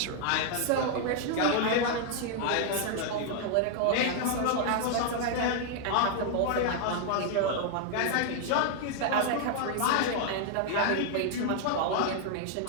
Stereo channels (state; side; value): different; both; correlation 0.00